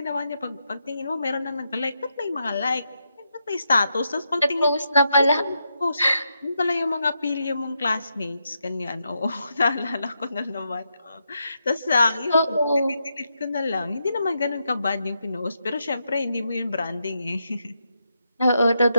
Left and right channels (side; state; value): both; inverted; correlation -0.83